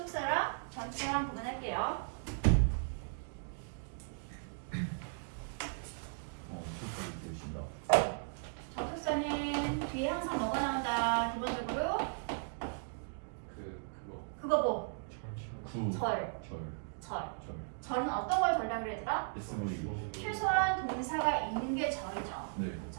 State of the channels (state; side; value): silent; left; digital silence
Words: 전치사랑 구분할게요. 술까지 드신다 접속사는 뒤에 항상 뭐가 나온다? 기본적으로 그거 뭐? 절. 절은 어떤 걸 절이라 그러더라? SVO 최소한 동사가 있는 게 절이죠. 네